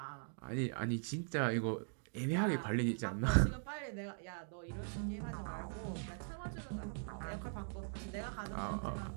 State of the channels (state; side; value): silent; left; digital silence